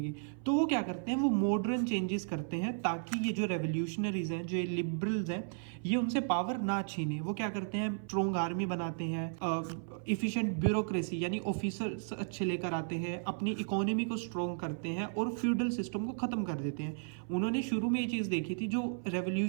तो वो क्या करते हैं, वो मॉडर्न चेंजेस करते हैं ताकि ये जो रेवोल्यूशनरीज हैं, जो लिबरल्स हैं, ये उनसे पावर ना छीने। वो क्या करते हैं, स्ट्रॉन्ग आर्मी बनाते हैं, इफिशिएंट ब्यूरोक्रेसी यानी ऑफिसर्स अच्छे लेकर आते हैं, अपनी इकोनॉमी को स्ट्रॉन्ग करते हैं और फ्यूडल सिस्टम को खत्म कर देते हैं। उन्होंने शुरू में ये चीज देखी थी, जो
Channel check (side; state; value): left; silent; 55 dB below the other